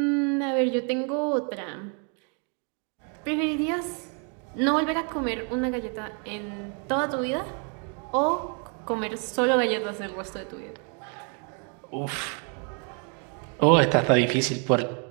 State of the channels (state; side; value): quieter; left; 39.0 dB